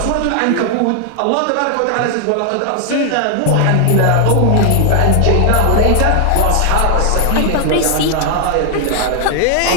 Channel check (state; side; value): different; both; correlation 0.00